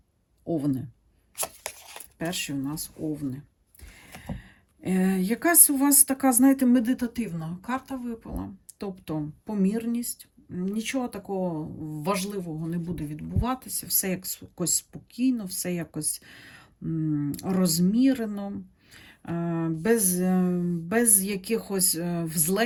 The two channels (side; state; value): both; identical; correlation 1.00